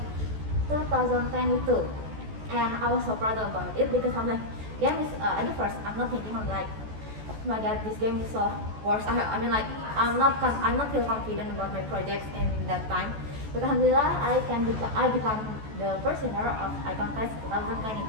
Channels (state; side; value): late; left; 14 ms